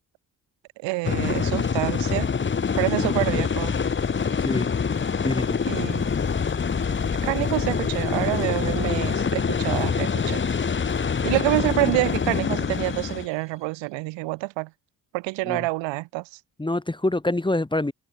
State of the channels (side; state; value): both; normal; correlation 0.31